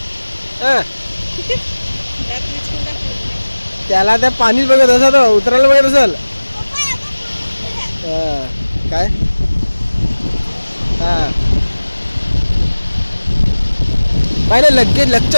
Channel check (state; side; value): inverted; both; correlation -1.00